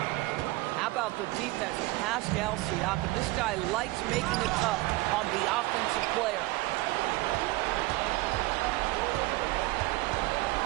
How about the defense? Pascal Siakam. This guy likes making it tough on the offensive player.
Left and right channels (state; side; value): quieter; left; 20.2 dB